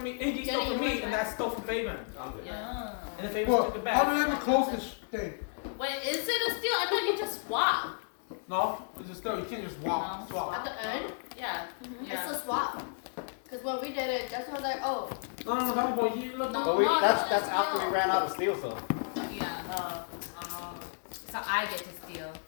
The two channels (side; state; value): right; silent; digital silence